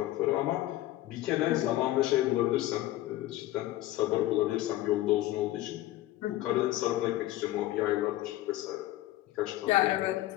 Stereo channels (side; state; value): right; quieter; 15.5 dB